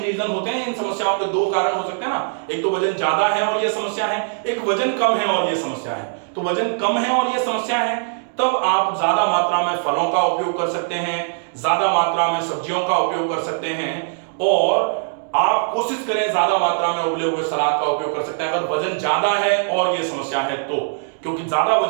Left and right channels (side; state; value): left; silent; digital silence